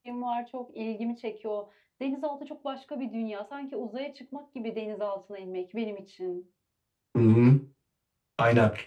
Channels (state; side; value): identical; both; correlation 1.00